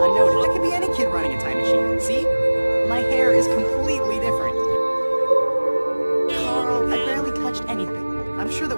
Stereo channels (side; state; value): both; inverted; correlation -1.00